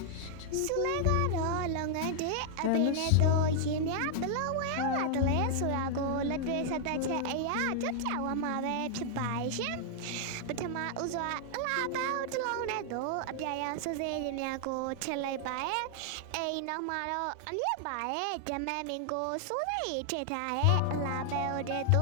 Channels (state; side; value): different; both; correlation 0.00